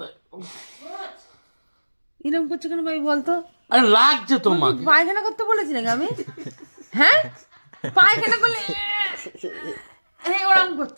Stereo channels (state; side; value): inverted; both; correlation -1.00